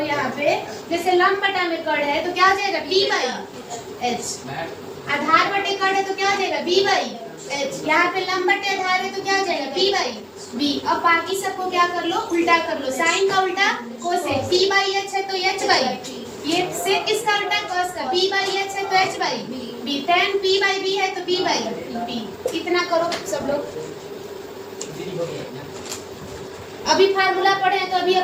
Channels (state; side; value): identical; both; correlation 1.00